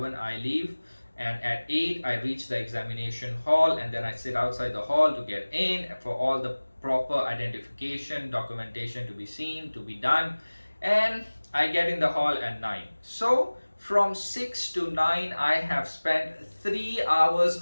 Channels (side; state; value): both; inverted; correlation -1.00